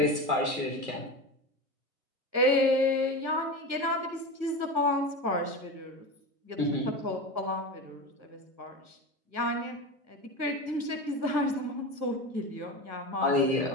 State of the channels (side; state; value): left; late; 1.5 ms